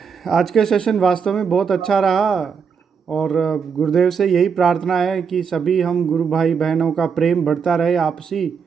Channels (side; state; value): left; quieter; 6.3 dB